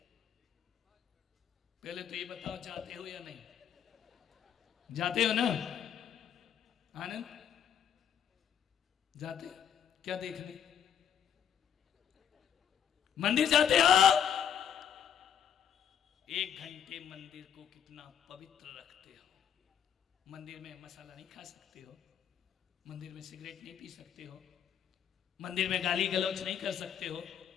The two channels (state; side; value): quieter; right; 8.8 dB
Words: पहले तो ये बताओ, जाते हो या नहीं? जाते हो ना आनंद? जाते? क्या देखने? मंदिर जाते हो? 1 घंटे मंदिर को कितना पवित्र रखते हो। मंदिर में मसाला नहीं खा सकते हो, मंदिर में सिगरेट नहीं पी सकते हो, मंदिर में गाली गलौज नहीं कर सकते हो,